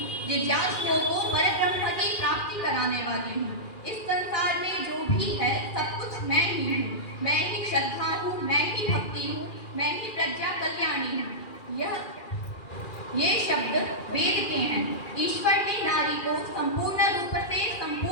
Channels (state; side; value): late; right; 2.4 ms